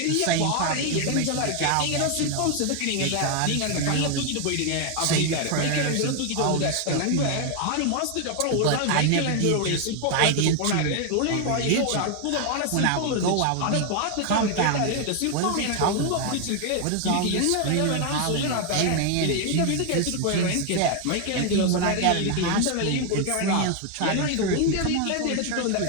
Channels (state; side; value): different; both; correlation 0.01